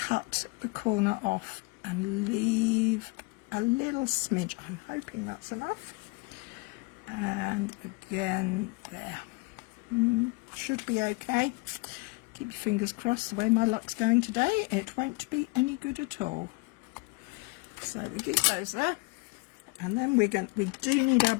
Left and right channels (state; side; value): quieter; right; 27.4 dB